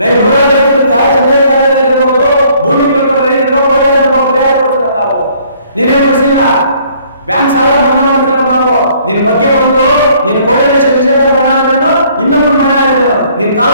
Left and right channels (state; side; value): inverted; both; correlation -0.61